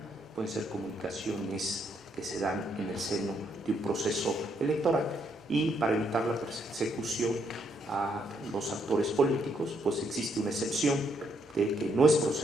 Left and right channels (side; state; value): both; normal; correlation 0.74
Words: pueden ser comunicaciones que se dan en el seno de un proceso electoral, y para evitar la persecución a los actores políticos, pues existe una excepción de que no es